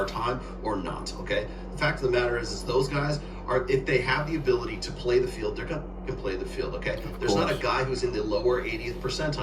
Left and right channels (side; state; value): both; identical; correlation 1.00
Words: time or not, okay? The fact of the matter is those guys are, if they have the ability to play the field, they're gonna play the field, okay? There's not a guy who's in the lower 80th